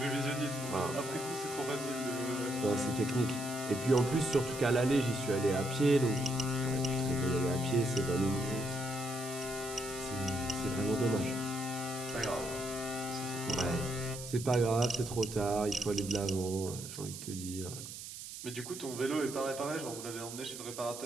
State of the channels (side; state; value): right; noise; hiss, 10 dB below the sound